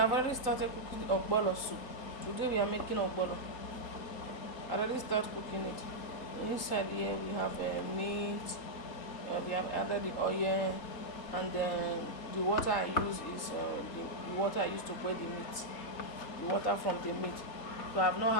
already started cooking ogbolor soup. Today we are making ogbolor. I already started cooking it. Inside here we have meat, we have added the oil, and then the water I use is the water I use to boil the meat, the water from the meat. So I have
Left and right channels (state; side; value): late; right; 3.8 ms